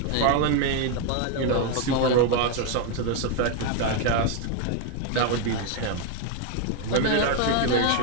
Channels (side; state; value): both; different; correlation 0.01